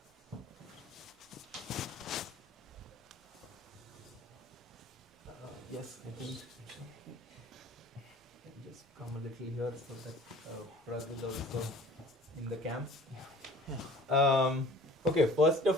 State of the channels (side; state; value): both; normal; correlation 0.48